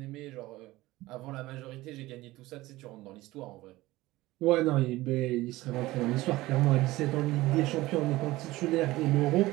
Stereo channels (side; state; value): left; quieter; 18.3 dB